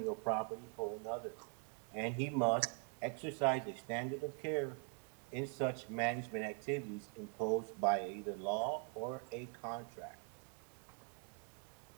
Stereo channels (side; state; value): left; quieter; 38.9 dB